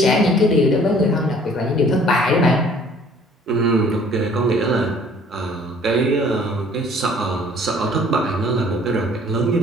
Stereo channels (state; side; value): normal; both; correlation 0.55